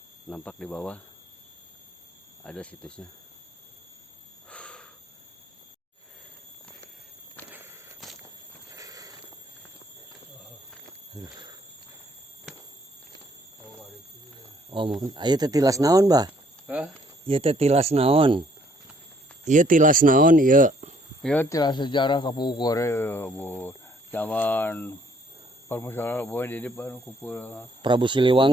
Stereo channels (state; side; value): normal; both; correlation 0.64